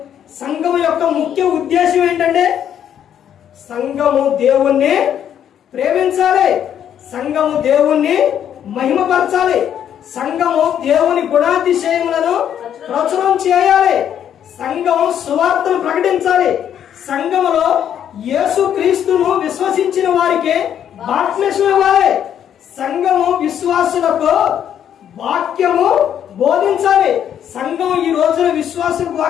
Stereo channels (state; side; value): quieter; right; 9.6 dB